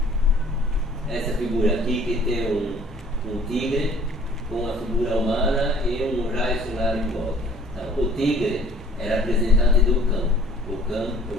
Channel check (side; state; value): both; normal; correlation 0.53